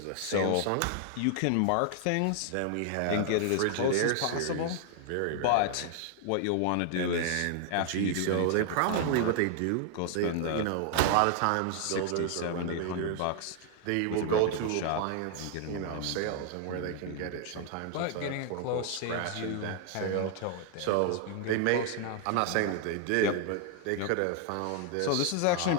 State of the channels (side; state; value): both; different; correlation 0.00